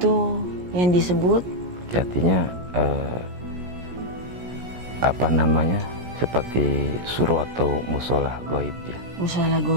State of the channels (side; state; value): left; late; 17 ms